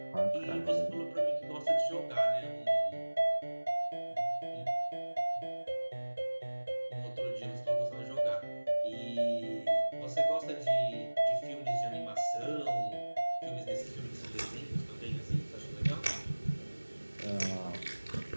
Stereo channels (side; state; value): both; inverted; correlation -1.00